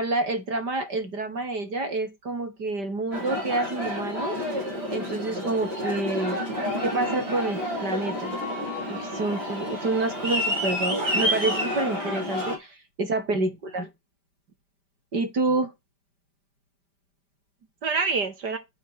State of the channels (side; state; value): left; late; 5.1 ms